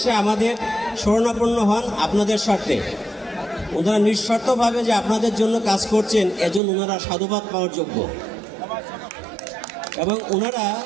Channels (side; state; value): left; drops out; at 6.6 s